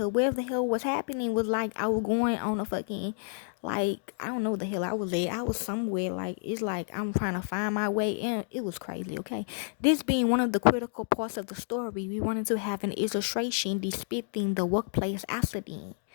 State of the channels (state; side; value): silent; right; digital silence